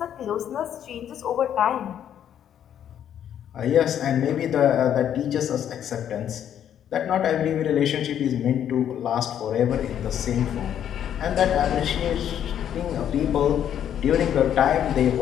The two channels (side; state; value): right; quieter; 9.8 dB